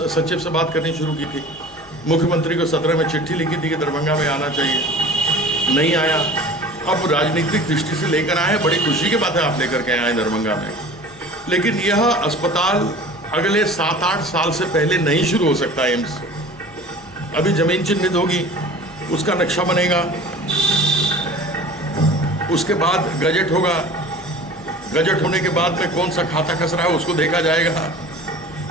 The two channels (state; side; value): noise; left; hum, 26 dB below the sound